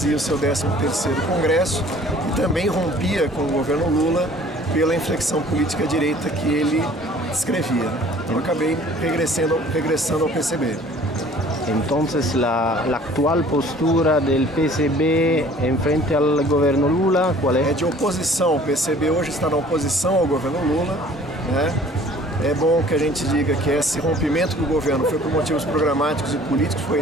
o seu 13º Congresso e também rompia com o governo Lula pela inflexão política à direita que ele descrevia. Então acabei regressando ao PCB. Entonces la actual postura del PCB en frente al governo Lula, qual é? É de oposição. O PCB hoje está na oposição ao governo Lula, né? É bom que a gente diga que esse rompimento do governo foi por motivos programáticos e políticos,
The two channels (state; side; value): normal; both; correlation 0.51